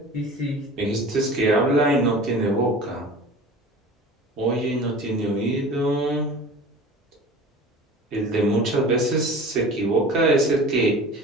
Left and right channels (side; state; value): both; normal; correlation 0.39